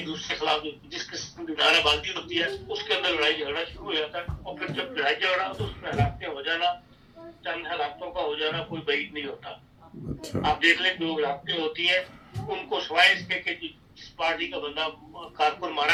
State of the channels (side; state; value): both; identical; correlation 1.00